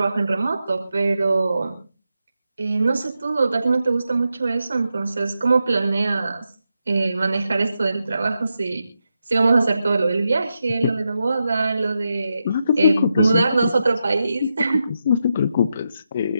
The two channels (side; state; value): both; inverted; correlation -0.87